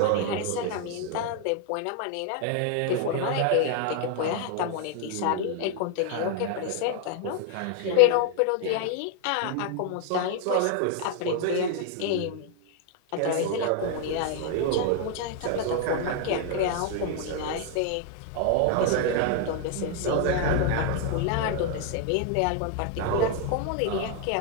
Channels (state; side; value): different; both; correlation 0.00